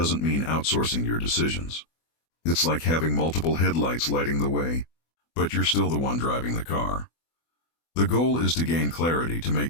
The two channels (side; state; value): right; late; 24 ms